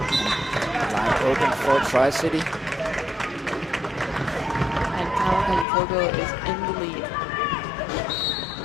Line open for TriCity. And Kamikaze Coco is in the lead.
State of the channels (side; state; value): right; drops out; at 5.7 s